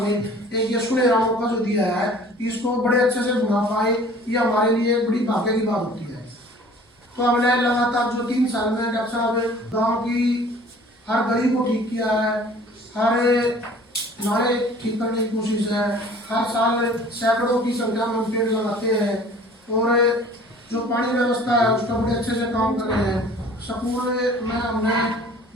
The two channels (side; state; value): both; normal; correlation 0.49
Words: एक ये सुनहरा मौका जो दिया है, इसको बड़े अच्छे से बना पाए, ये हमारे लिए बड़ी भाग्य की बात होती है। तो हमने लगातार जो 3 साल में डॉक्टर साहब गाँव की हर गली को ठीक किया है, हर नाले ठीक करने की कोशिश है, हर साल सैकड़ों की संख्या में पेड़ लगाते हैं और जो पानी व्यवस्था है उसका बड़े अच्छे से काम कर रहे हैं। स्कूल में हमने